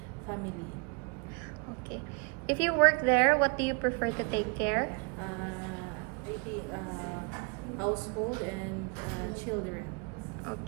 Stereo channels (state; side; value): quieter; left; 31.9 dB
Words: family. Okay. If you work there, what do you prefer to take care? Household and children.